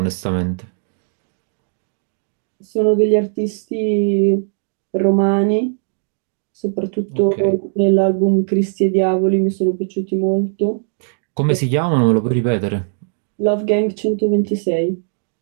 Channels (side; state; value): left; silent; digital silence